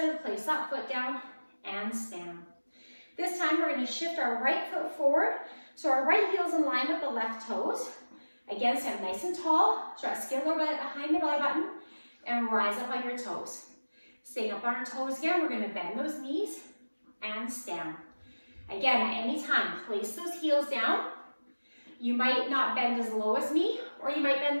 place that foot down and stand. This time we're going to shift our right foot forward so our right heel is in line with the left toes. Again, stand nice and tall. Stretch skin lower belly behind the belly button and rise up on your toes. Staying up on our toes again, we're going to bend those knees and stand. Again, at any time, place those heels down. You might not bend as low as me, or you might bend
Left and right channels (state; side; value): inverted; both; correlation -1.00